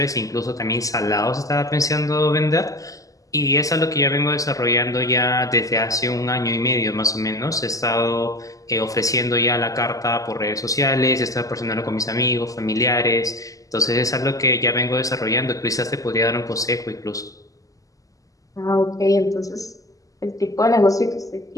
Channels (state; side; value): late; right; 0.17 ms